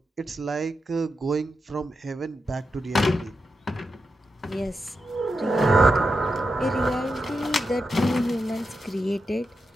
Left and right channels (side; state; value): both; normal; correlation 0.87